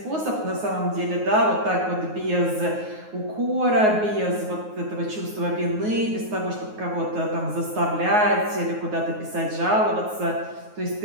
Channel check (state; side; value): late; left; 9.5 ms